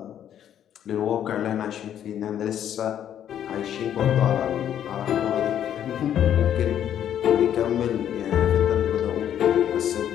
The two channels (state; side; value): quieter; right; 10.1 dB